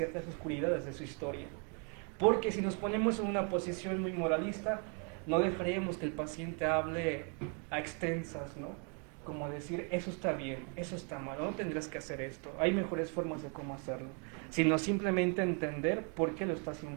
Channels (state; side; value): quieter; left; 38.7 dB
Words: oscuridades de su historia. Porque si nos ponemos en una posición muy moralista, no dejaríamos que el paciente hable a extensas, ¿no? como decir, eso está bien, eso está mal, no tendrás que hacer esto, hay mejores formas de cómo hacerlo, sino simplemente entender por qué lo está